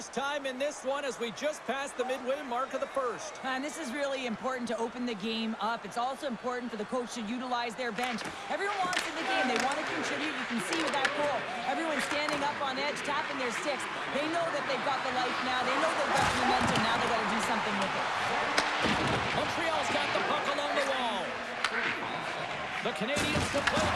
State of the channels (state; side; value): identical; both; correlation 1.00